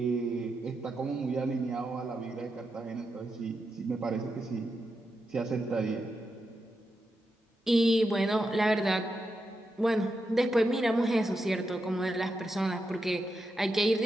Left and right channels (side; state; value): both; normal; correlation 0.86